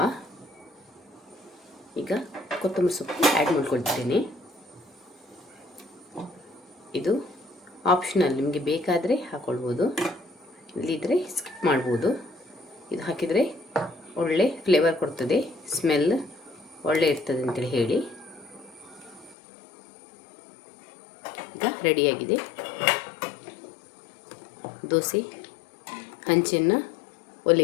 ಈಗ ಕೊತ್ತಂಬರಿ ಸೊಪ್ಪು ಆ್ಯಡ್ ಮಾಡ್ಕೊಳ್ತಿದ್ದೇನೆ. ಇದು ಆಪ್ಷನಲ್, ನಿಮಗೆ ಬೇಕಾದರೆ ಹಾಕ್ಕೊಳ್ಬೋದು, ಇಲ್ಲಿದ್ದರೆ ಸ್ಕಿಪ್ ಮಾಡ್ಬೋದು. ಇದು ಹಾಕಿದರೆ ಒಳ್ಳೆ ಫ್ಲೇವರ್ ಕೊಡ್ತದೆ, ಸ್ಮೆಲ್ ಒಳ್ಳೆ ಇರ್ತದೆ ಅಂತೇಳಿ ಹೇಳಿ. ಈಗ ರೆಡಿಯಾಗಿದೆ. ದೋಸೆ ಹಂಚನ್ನು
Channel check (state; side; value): drops out; right; at 19.4 s